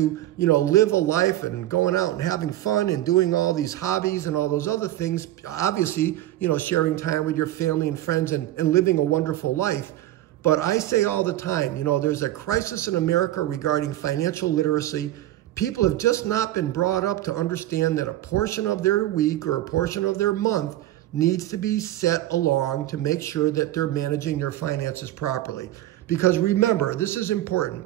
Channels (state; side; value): quieter; left; 14.5 dB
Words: live a life and going out and having fun and doing all these hobbies and all those other things. Obviously, sharing time with your family and friends and living a wonderful life. But I say all the time, there's a crisis in America regarding financial literacy. People have just not been brought up to understand that a portion of their week or a portion of their month needs to be set along to make sure that they're managing their finances properly. Because remember, this is